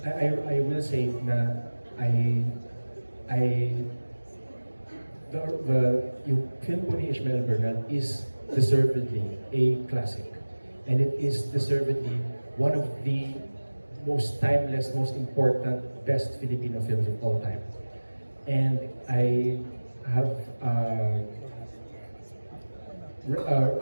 I will say na yung film po ni Ishmael Bernal is deservedly a classic, and it is deservedly one of the most timeless, most important, best Filipino films of all time. And I have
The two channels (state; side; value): inverted; both; correlation -1.00